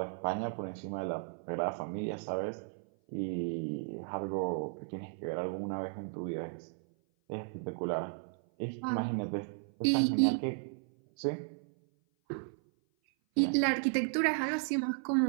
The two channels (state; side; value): silent; left; 55 dB below the other